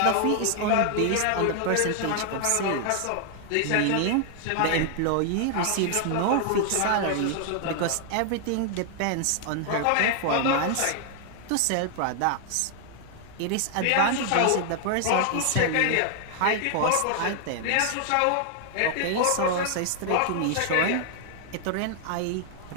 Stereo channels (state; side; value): different; both; correlation 0.00